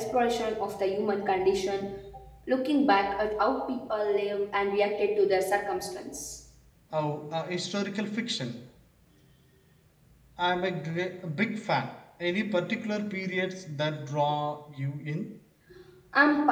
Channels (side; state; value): both; identical; correlation 1.00